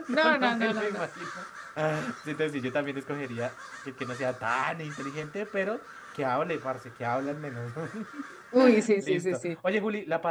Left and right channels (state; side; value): identical; both; correlation 1.00